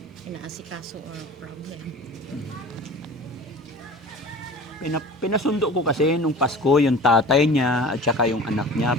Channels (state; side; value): normal; both; correlation 0.40